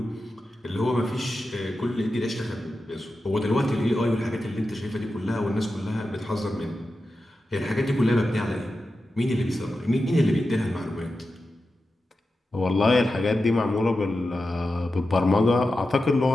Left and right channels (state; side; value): normal; both; correlation 0.91